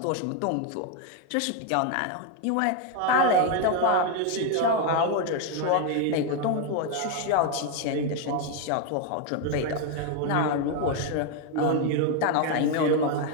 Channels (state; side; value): different; both; correlation 0.01